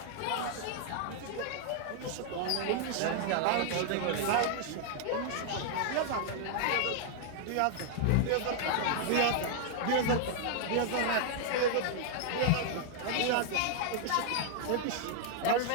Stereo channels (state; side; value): different; both; correlation -0.01